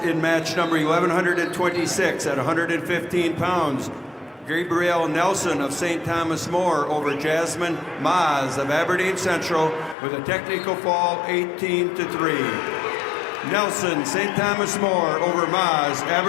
in match number 1126 at 115 pounds. Gabrielle Nelson of St. Thomas More over Jasmine Maz of Aberdeen Central with a technical fall 18-3. Nelson, St. Thomas More over Maz,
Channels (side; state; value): right; drops out; at 10.0 s